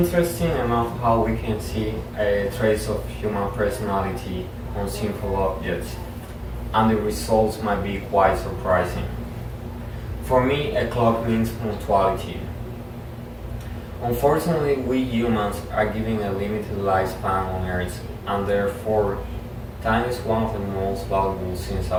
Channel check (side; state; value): both; identical; correlation 1.00